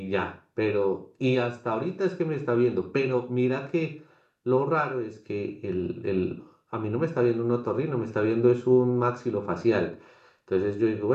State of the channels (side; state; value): both; identical; correlation 1.00